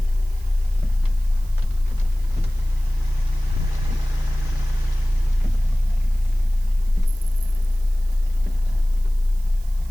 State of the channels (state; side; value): noise; right; hiss, 25 dB below the sound